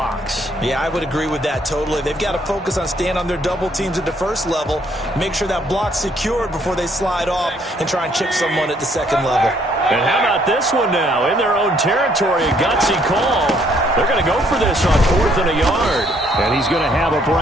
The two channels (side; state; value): both; normal; correlation 0.67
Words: Yeah, I would agree with that totally. They've got to focus on staying on their double teams at the first level, make sure that block's secured before they slide off and try and chip someone at the second level. And how about this one now? In their own territory, a gutsy call. They're going to go for this on 4th and a yard. And he's going to have a